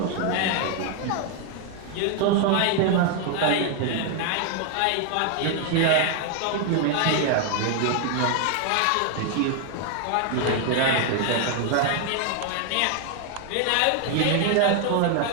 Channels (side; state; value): both; different; correlation 0.00